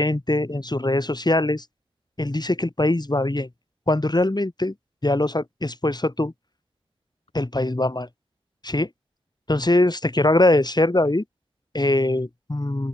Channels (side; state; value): both; normal; correlation 0.77